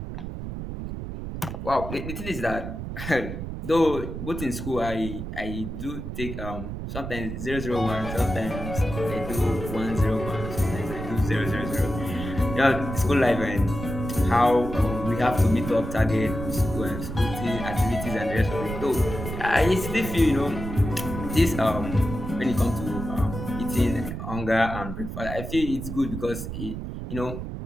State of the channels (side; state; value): right; noise; rumble, 7 dB below the sound